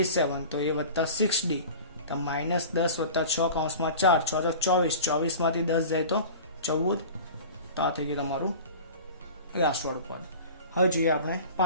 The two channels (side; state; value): both; inverted; correlation -0.38